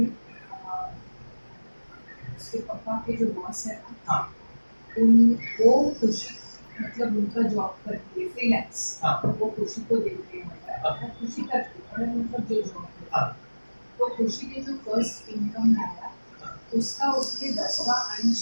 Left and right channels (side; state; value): both; inverted; correlation -1.00